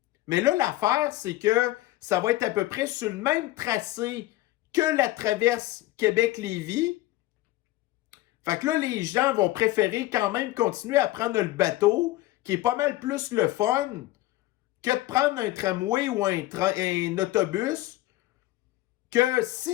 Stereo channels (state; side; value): quieter; right; 16.8 dB